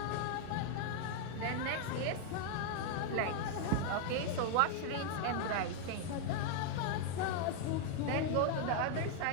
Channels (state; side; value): different; both; correlation 0.00